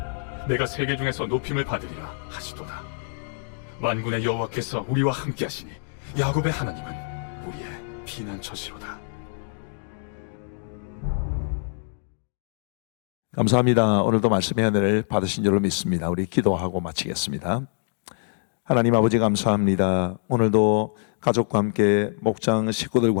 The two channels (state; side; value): silent; right; digital silence